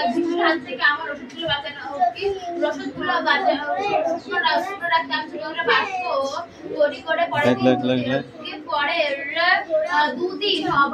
বৃষ্টির হাত থেকে আমার ওষুধগুলো বাঁচানো রসদগুলো রাখতে আমি ছোট করে বাক্স তৈরি করে পরের 2 দিন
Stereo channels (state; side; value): identical; both; correlation 1.00